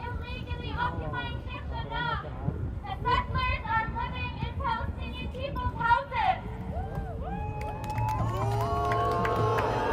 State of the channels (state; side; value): identical; both; correlation 1.00